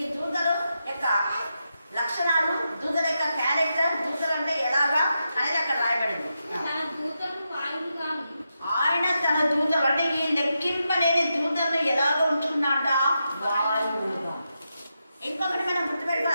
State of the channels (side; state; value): both; inverted; correlation -0.86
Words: ఈ దూతలు యొక్క లక్షణాలు, దూతల యొక్క క్యారెక్టర్, దూతలు అంటే ఎలాగా అనేది అక్కడ రాయబడింది. ఆయన తన దూతలు అంటే ఈ లెక్కింపలేని దూతలను ఎలాగ ఉంచుకున్నాడా? వాయువులుగా. ఇంకొకటి మనం